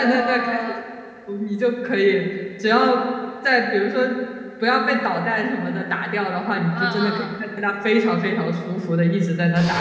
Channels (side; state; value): both; identical; correlation 1.00